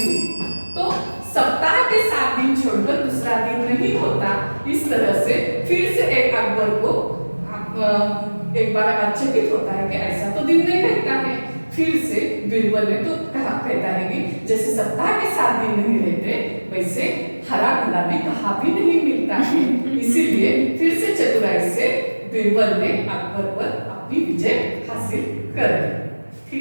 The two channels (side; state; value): both; inverted; correlation -1.00